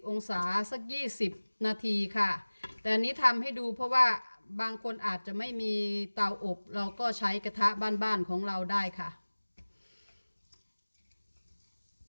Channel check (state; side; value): inverted; both; correlation -1.00